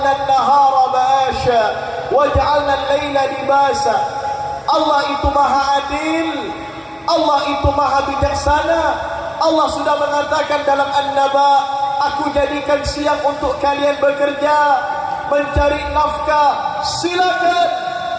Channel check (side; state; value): both; identical; correlation 1.00